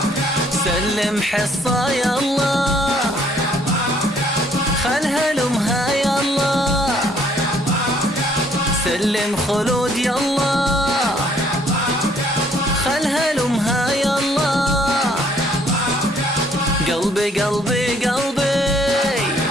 سلم حصة يلا خلها لأمها يلا سلم خلود يلا خلها لأمها يلا قلبي قلبي قلبي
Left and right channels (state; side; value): normal; both; correlation 0.63